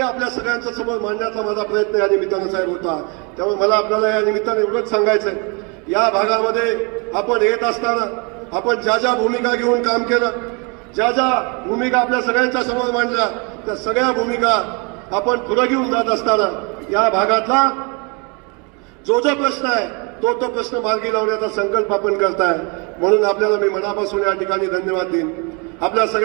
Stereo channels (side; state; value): left; quieter; 32.3 dB